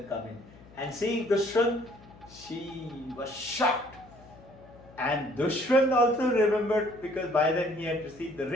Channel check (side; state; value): left; noise; hum, 22 dB below the sound